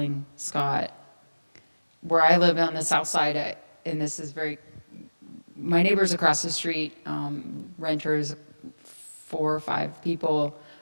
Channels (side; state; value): both; inverted; correlation -1.00